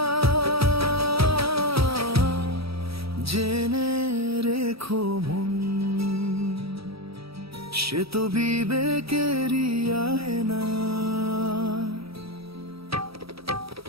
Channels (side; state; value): left; late; 0.77 ms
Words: জেনে রেখো মন, সে তো বিবেকেরই আয়না।